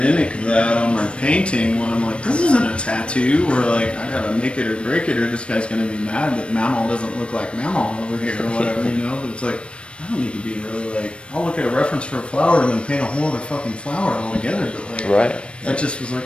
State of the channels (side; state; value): right; late; 0.059 ms